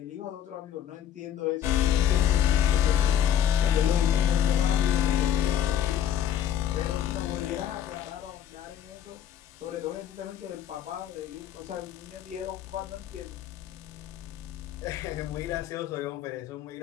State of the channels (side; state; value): right; quieter; 10.0 dB